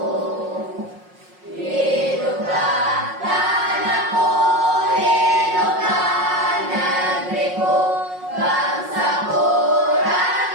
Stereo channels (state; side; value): late; left; 5.5 ms